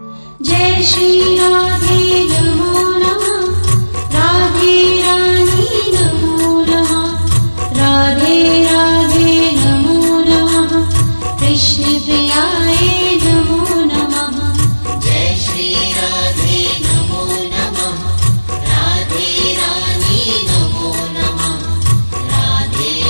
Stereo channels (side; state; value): both; inverted; correlation -1.00